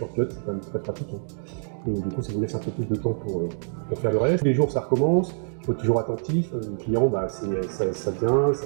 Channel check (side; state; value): left; silent; digital silence